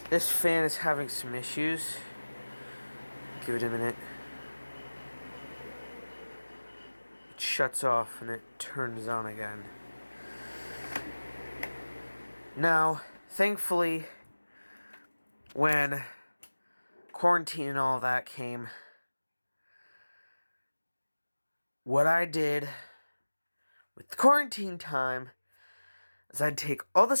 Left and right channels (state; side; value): inverted; both; correlation -1.00